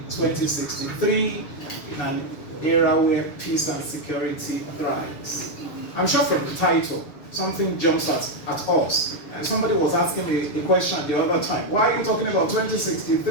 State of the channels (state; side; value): late; right; 6.9 ms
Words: 2063 in an era where peace and security thrives. I'm sure from the title, something jumps at us. And somebody was asking me a question the other time. Why are you talking about